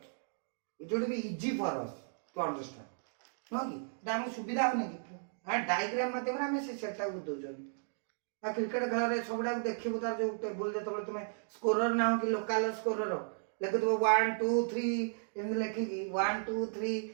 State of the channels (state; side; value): silent; left; digital silence